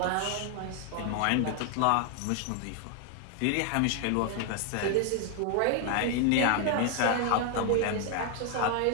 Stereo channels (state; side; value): different; both; correlation 0.00